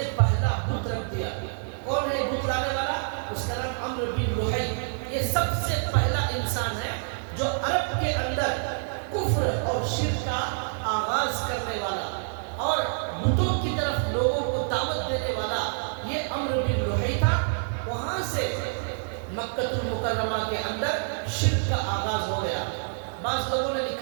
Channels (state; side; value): silent; left; digital silence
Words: پہلا بت رکھ دیا۔ کون ہے بت لانے والا؟ اس کا نام عمرو بن لحی۔ یہ سب سے پہلا انسان ہے جو عرب کے اندر کفر اور شرک کا آغاز کرنے والا اور بتوں کی طرف لوگوں کو دعوت دینے والا، یہ عمرو بن لحی تھا۔ وہاں سے مکہ المکرمہ کے اندر شرک کا آغاز ہو گیا۔ بعض لوگوں نے